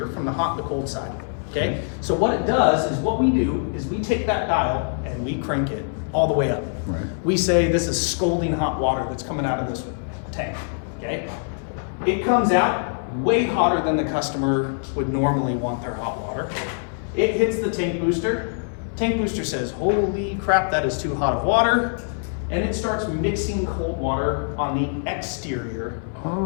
from the hot and the cold side. Okay? So what it does is what we do is we take that dial and we crank it all the way up. Right. We say this is scalding hot water that's coming out of this tank. Okay? It comes out way hotter than the customer would normally want their hot water. It hits the tank booster. Tank booster says, holy crap, that is too hot of water. And it starts mixing cold water on the exterior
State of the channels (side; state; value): right; silent; digital silence